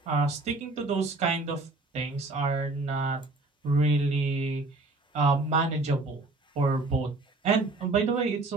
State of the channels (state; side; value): quieter; left; 3.1 dB